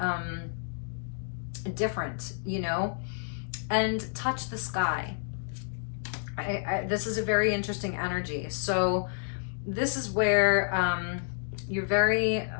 different, you know, and touch the sky. This is a very interesting energy. So this is where you're very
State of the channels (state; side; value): silent; right; digital silence